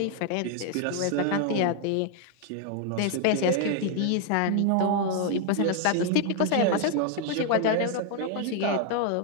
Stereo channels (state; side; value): different; both; correlation 0.00